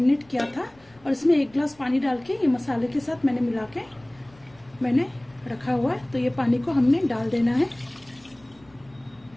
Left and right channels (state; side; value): noise; left; rumble, 29 dB below the sound